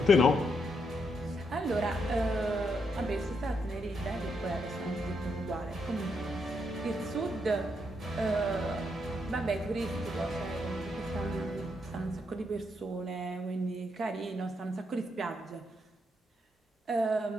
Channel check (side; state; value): both; normal; correlation 0.78